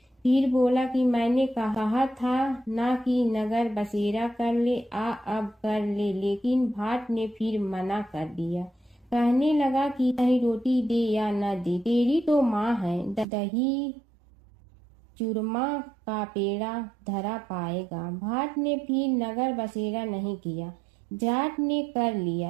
फिर बोला कि मैंने कहा था ना कि नगर बसेरा कर ले, अब कर ले, लेकिन भाट ने फिर मना कर दिया। कहने लगा कि चाहे रोटी दे या न दे, तेरी तो माँ है, दही चूरमा का पेड़ा धरा पाएगा। भाट ने फिर नगर बसेरा नहीं किया। जाट ने कर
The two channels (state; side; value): drops out; left; at 13.2 s